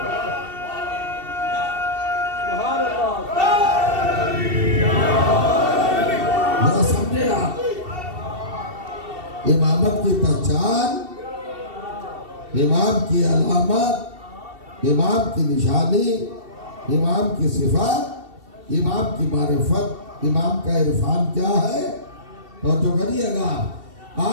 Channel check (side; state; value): left; late; 2.7 ms